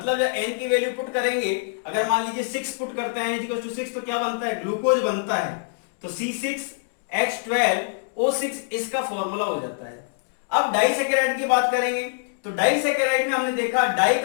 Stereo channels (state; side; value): silent; right; digital silence